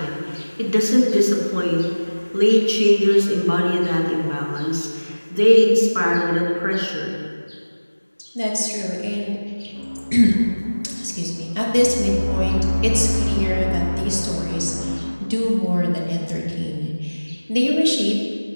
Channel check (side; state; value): both; inverted; correlation -1.00